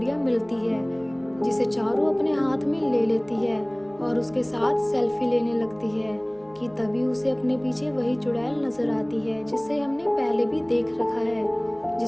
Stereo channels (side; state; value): left; noise; hum, 29 dB below the sound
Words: मिलती है, जिसे चारू अपने हाथ में ले लेती है और उसके साथ सेल्फी लेने लगती है कि तभी उसे अपने पीछे वही चुड़ैल नजर आती है जिसे हमने पहले भी देख रखा है,